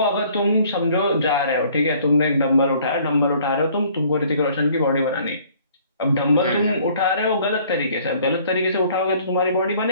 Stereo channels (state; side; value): inverted; both; correlation -0.57